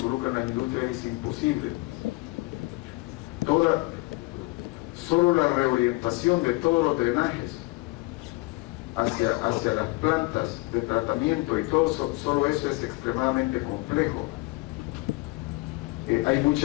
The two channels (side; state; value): right; quieter; 23.7 dB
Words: las industrias es imposible. Solo la reorientación de todos los drenajes hacia las plantas de tratamiento y todo, solo eso es extremadamente complejo. Hay